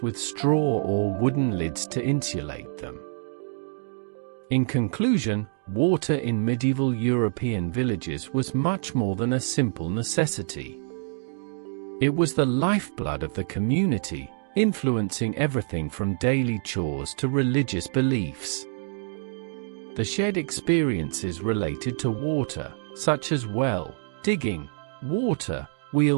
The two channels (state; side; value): silent; left; digital silence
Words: straw or wooden lids to insulate them. In conclusion, water in medieval European villages was much more than a simple necessity. It was the lifeblood of the community, influencing everything from daily chores to religious beliefs. The shared experiences related to water, such as well digging, water